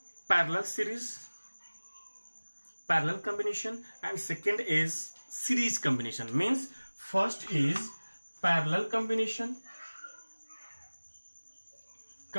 parallel combination, and second is series combination. Means first is parallel combination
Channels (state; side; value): inverted; both; correlation -1.00